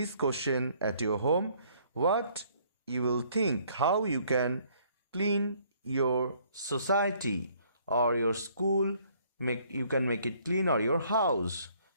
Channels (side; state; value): both; inverted; correlation -0.63